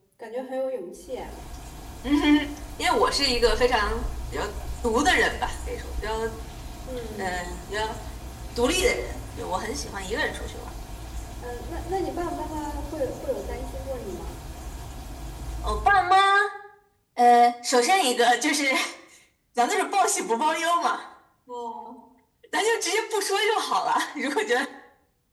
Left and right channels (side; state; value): both; identical; correlation 1.00